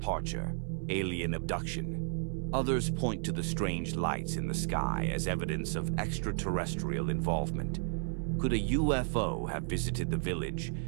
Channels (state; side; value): silent; left; 56 dB below the other